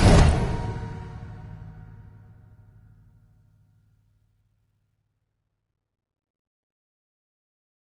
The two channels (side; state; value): both; identical; correlation 1.00